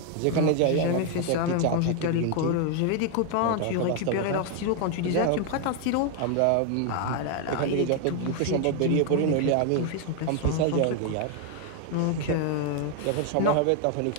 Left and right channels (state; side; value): different; both; correlation 0.00